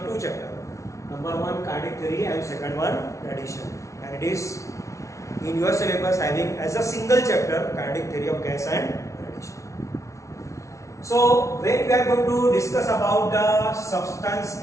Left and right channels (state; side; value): late; right; 0.14 ms